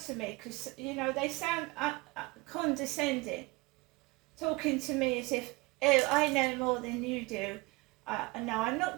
to me because, you know, they sound condescending, talking to me as if, oh, I know more than you do. No, I'm not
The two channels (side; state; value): left; quieter; 24.0 dB